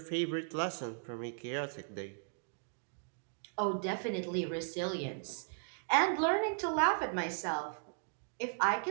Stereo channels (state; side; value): silent; left; digital silence